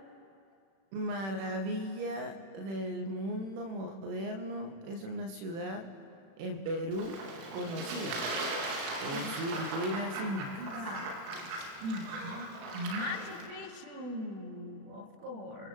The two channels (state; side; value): late; left; 36 ms